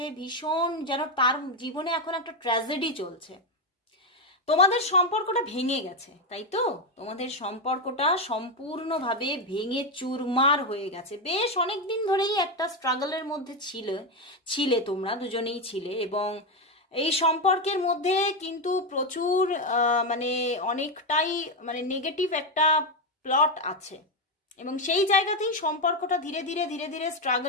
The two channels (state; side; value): normal; both; correlation 0.08